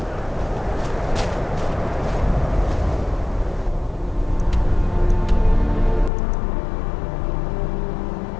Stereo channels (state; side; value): drops out; right; at 6.1 s